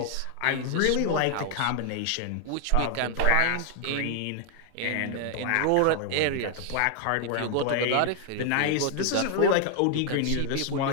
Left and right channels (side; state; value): both; different; correlation 0.00